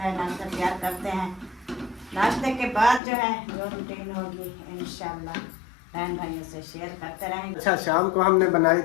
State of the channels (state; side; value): drops out; right; at 3.0 s